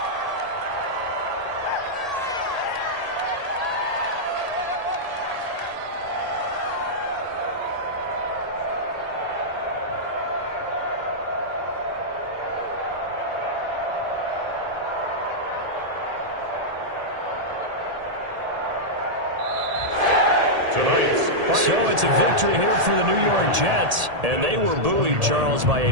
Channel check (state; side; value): late; left; 1.8 ms